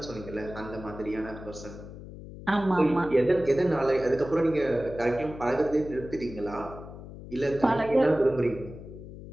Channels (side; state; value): left; noise; hum, 14 dB below the sound